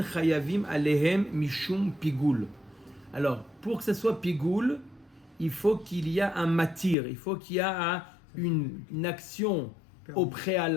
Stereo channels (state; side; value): drops out; right; at 7.0 s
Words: chayavim alehem mishum pigoul. Alors, pour que ce soit pigoul, il faut qu'il y ait un matir, il faut qu'il y ait une action au